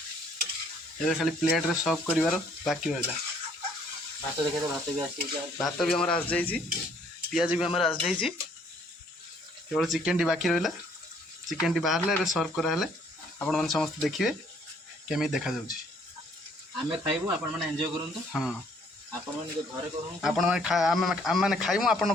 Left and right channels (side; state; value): both; normal; correlation 0.63